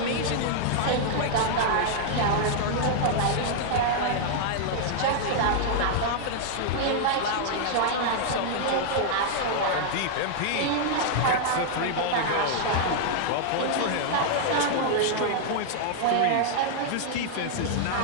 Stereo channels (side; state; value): both; different; correlation -0.01